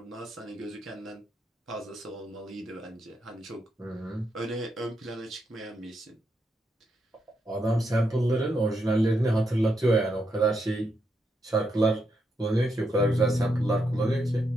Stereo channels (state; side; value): normal; both; correlation 0.81